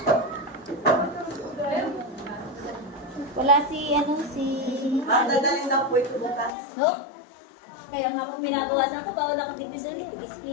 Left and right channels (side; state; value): right; drops out; at 6.5 s